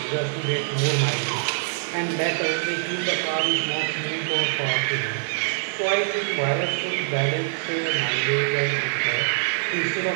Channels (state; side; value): silent; left; digital silence